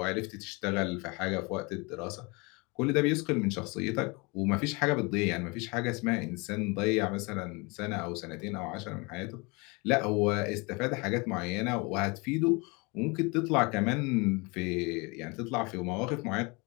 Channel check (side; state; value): right; quieter; 28.0 dB